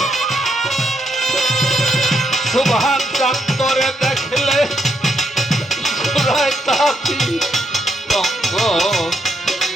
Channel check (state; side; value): normal; both; correlation 0.78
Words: সুবহান চাঁদরে দেখলে সুরায় তাপি তঙ্গ